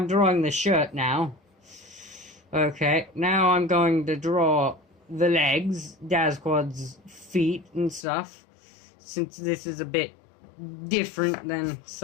drawing the shirt now. Okay, now I'm going to draw the legs, Dazquad's feet and stuff. Since this is a bit different than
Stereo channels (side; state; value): right; drops out; at 8.1 s